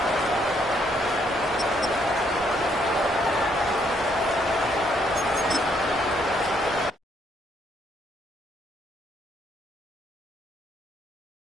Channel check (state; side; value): normal; both; correlation 0.70